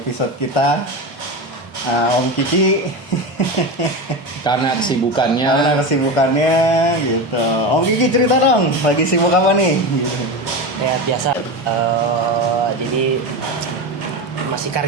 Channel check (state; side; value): normal; both; correlation 0.21